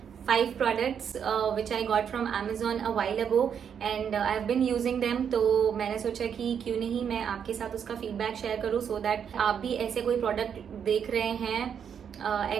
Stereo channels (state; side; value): quieter; left; 7.8 dB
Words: 5 products which I got from Amazon a while ago and I've been using them. तो मैंने सोचा कि क्यों नहीं मैं आपके साथ उसका फीडबैक शेयर करूँ so that आप भी ऐसे कोई प्रोडक्ट देख रहे हैं